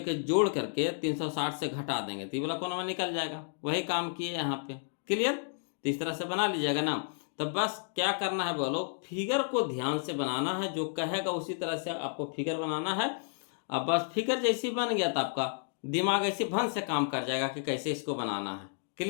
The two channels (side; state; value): right; silent; digital silence